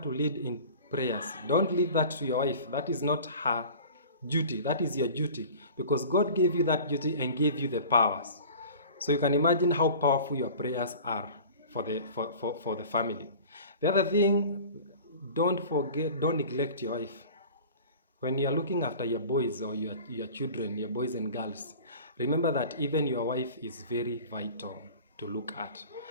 to lead in prayers. Don't leave that to your wife. That is not her duty. That is your duty, because God gave you that duty and gave you the powers. So you can imagine how powerful your prayers are for the family. The other thing, don't neglect your wife. When you are looking after your boys or your children, your boys and girls, remember that even your wife is very vital to look at.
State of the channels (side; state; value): both; inverted; correlation -0.41